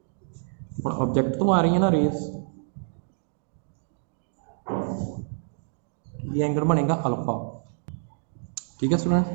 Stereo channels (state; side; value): silent; left; digital silence